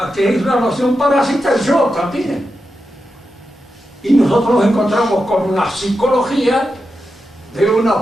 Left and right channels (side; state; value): both; normal; correlation 0.89